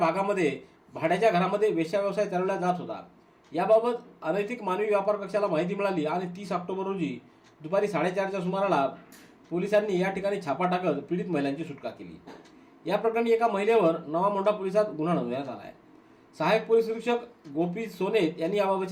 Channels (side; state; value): both; identical; correlation 1.00